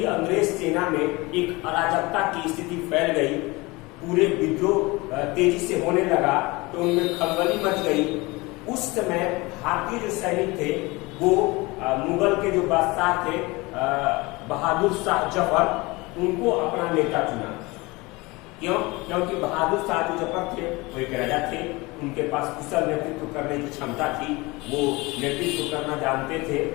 अंग्रेज सेना में एक अराजकता की स्थिति फैल गई, पूरे विद्रोह तेजी से होने लगा, तो उनमें खलबली मच गई। उस समय भारतीय जो सैनिक थे वो मुगल के जो बादशाह थे बहादुर शाह जफर, उनको अपना नेता चुना। क्यों? क्योंकि बहादुर शाह जो जफर थे वो एक राजा थे, उनके पास कुशल नेतृत्व करने की क्षमता थी, वो नेतृत्व करना जानते थे।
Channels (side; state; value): right; quieter; 23.4 dB